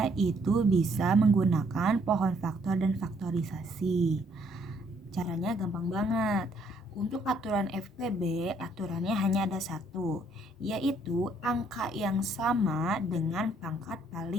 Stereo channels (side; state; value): both; normal; correlation 0.67